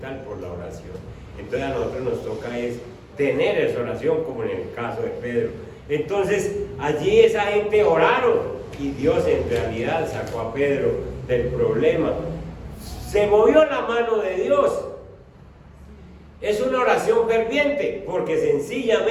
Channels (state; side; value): identical; both; correlation 1.00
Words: por la oración. Entonces a nosotros nos toca es tener esa oración, como en el caso de Pedro. Entonces allí esa gente oraron, y Dios en realidad sacó a Pedro del problema. Se movió la mano de Dios. Es una oración ferviente, porque